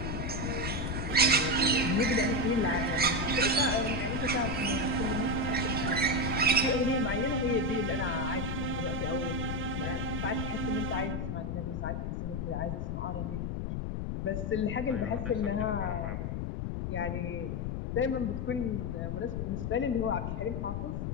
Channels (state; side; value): noise; left; rumble, 2 dB below the sound